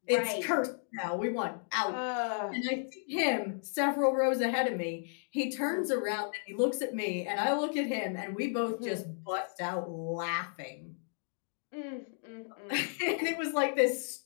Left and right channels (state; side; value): silent; right; digital silence